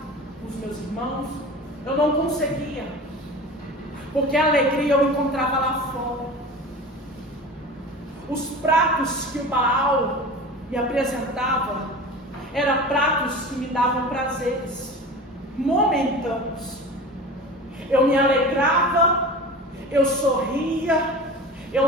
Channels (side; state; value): both; normal; correlation 0.34